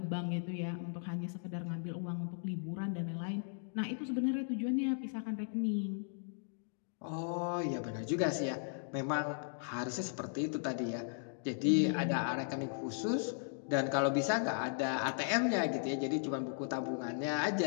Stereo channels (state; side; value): silent; right; digital silence